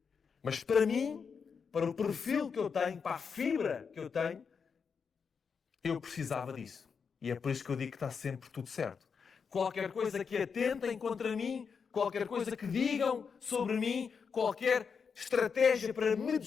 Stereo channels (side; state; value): right; quieter; 6.0 dB